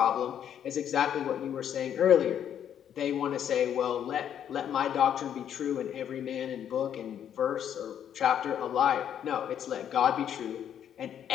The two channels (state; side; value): quieter; right; 9.5 dB